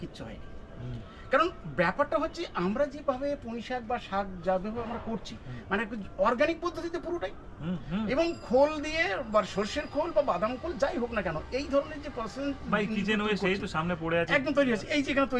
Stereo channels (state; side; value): identical; both; correlation 1.00